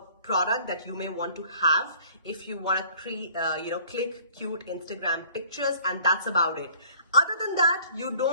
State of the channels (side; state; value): both; inverted; correlation -0.54